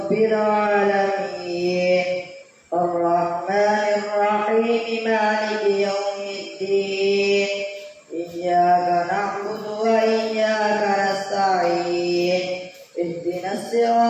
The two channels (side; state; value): both; identical; correlation 1.00